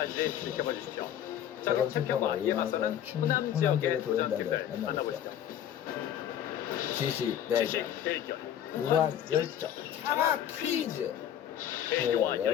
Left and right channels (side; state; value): right; quieter; 10.5 dB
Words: 지켜봐 주십시오. 자, 그럼 챔피언과 이에 맞서는 호남 지역의 도전팀들 만나보시죠. 지식 대결, 무한 열정 장학 퀴즈.